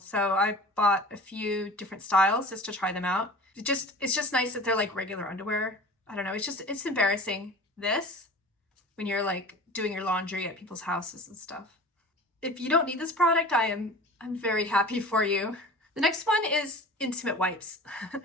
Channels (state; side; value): normal; both; correlation 0.39